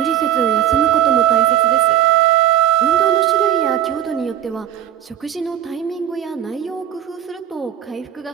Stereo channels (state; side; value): quieter; left; 11.2 dB